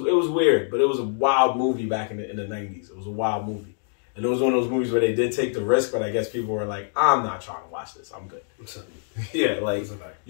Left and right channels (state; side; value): silent; right; digital silence